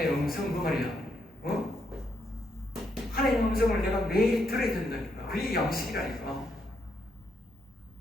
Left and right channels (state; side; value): normal; both; correlation 0.77